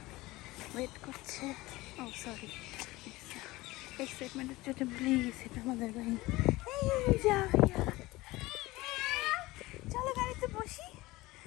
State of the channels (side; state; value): right; quieter; 19.7 dB